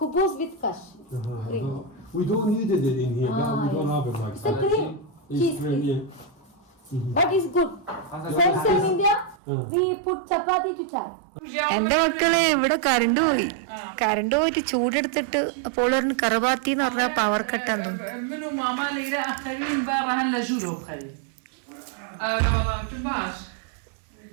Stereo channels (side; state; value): left; drops out; at 9.3 s